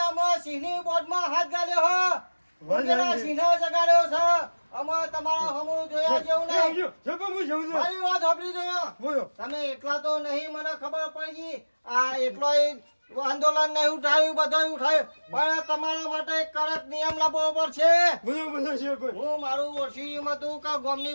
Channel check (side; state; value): both; inverted; correlation -1.00